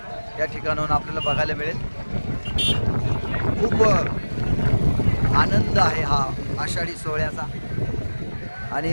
या ठिकाणाहून आपल्याला बघायला मिळेल. खूप आनंद आहे हा आषाढी सोहळ्याचा. आणि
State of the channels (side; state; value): both; inverted; correlation -1.00